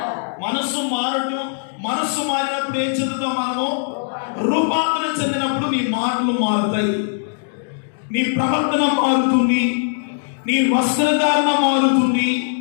మనస్సు మారినప్పుడు ఏం చెందుతాం మనము? రూపాంతరం చెందినప్పుడు నీ మాటలు మారుతాయి, నీ ప్రవర్తన మారుతుంది, నీ వస్త్రధారణ మారుతుంది,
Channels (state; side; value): silent; right; digital silence